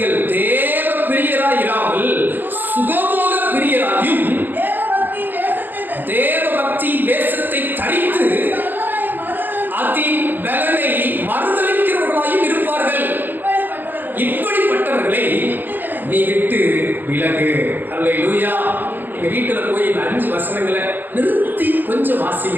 தேவ பிரியராய் இராமல் சுகபோக பிரியராயும் தேவ பக்தி வேஷத்தை தரித்து அதின் பலனை மறுதலிக்கிறவர்களாயும் இருப்பார்கள். இப்படிப்பட்டவர்களை நீ விட்டு விலகு. அல்லேலூயா. எங்க வீட்டுல போய் இந்த 5 வசனங்களை நிறுத்தி கொஞ்சம்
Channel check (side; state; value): left; late; 0.090 ms